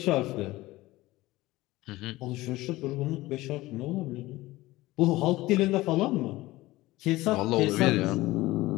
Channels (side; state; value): right; quieter; 18.5 dB